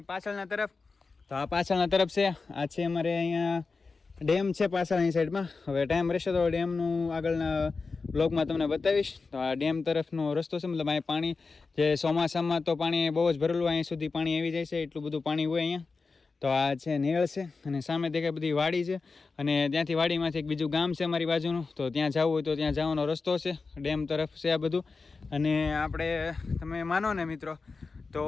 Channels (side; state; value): right; quieter; 4.3 dB